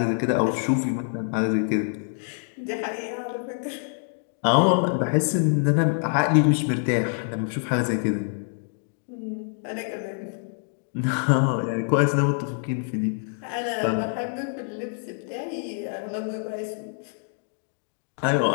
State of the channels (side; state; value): right; silent; 61 dB below the other